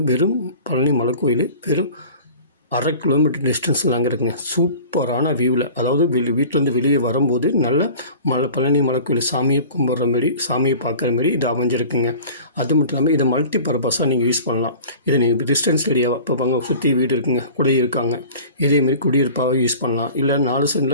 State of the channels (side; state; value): both; inverted; correlation -0.42